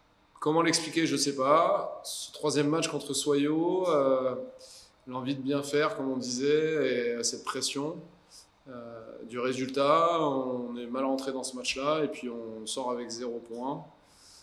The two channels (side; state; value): both; identical; correlation 1.00